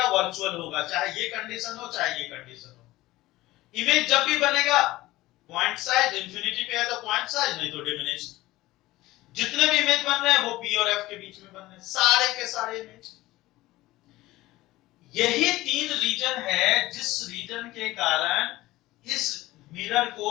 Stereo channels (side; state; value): right; quieter; 17.9 dB